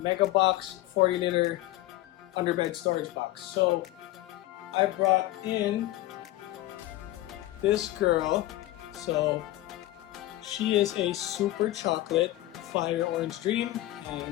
40-liter underbed storage box. So I brought in this girl. So she is a Super Chocolate Fire Orange Dream,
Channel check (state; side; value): quieter; right; 16.3 dB